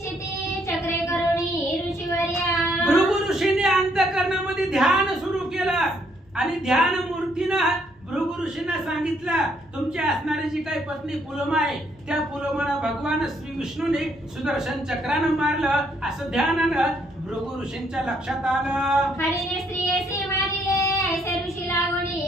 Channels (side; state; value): both; normal; correlation 0.70